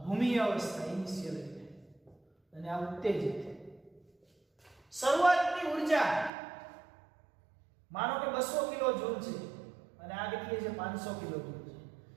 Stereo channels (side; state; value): left; drops out; at 6.3 s